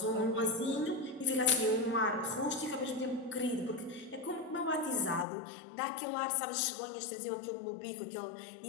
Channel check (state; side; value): drops out; right; at 5.2 s